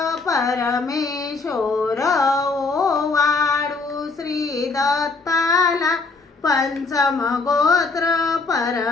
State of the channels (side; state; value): right; quieter; 4.0 dB